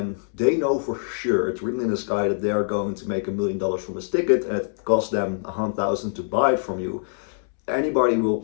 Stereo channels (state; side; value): silent; right; 63 dB below the other